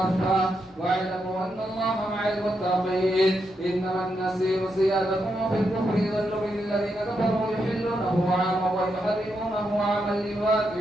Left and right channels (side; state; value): both; normal; correlation 0.83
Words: واعلموا أن الله مع المتقين. إنما النسيء زيادة في الكفر يضل به الذين كفروا يحلونه عاما ويحرمونه عاما